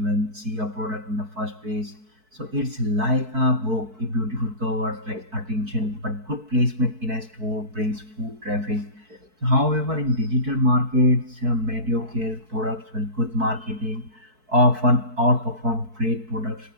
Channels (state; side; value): late; left; 4.6 ms